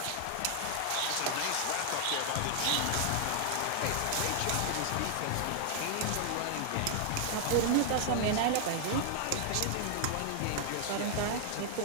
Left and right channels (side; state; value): both; different; correlation 0.00